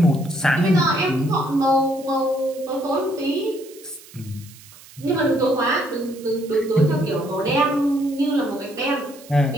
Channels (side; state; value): right; noise; hiss, 21 dB below the sound